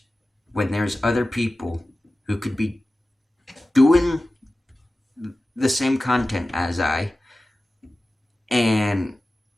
when there's other people who could be doing the same content as I, and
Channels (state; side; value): normal; both; correlation 0.95